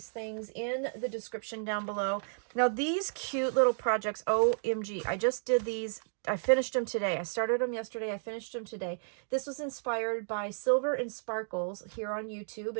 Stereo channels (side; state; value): left; silent; digital silence